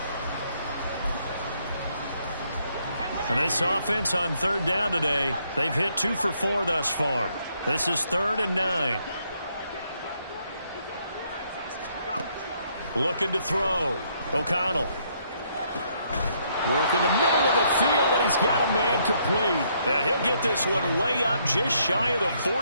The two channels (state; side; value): inverted; both; correlation -0.71